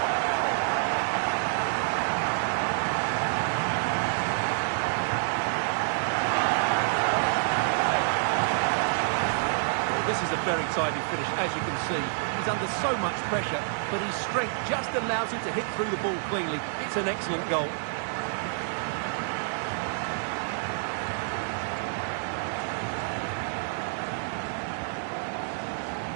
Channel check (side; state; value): left; silent; digital silence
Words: This is a very tidy finish, as you can see. He's under so much pressure, but his strength just allows him to hit through the ball cleanly. It's an excellent goal.